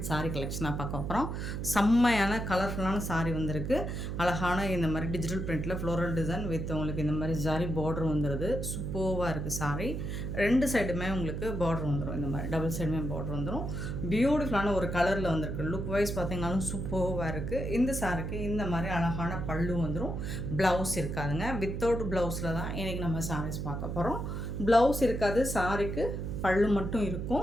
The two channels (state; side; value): noise; right; hum, 4 dB below the sound